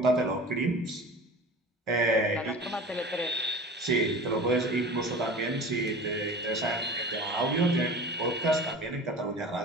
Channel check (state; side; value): normal; both; correlation 0.38